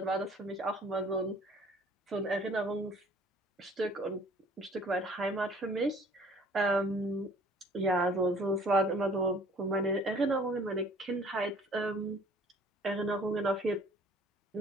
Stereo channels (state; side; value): normal; both; correlation 0.54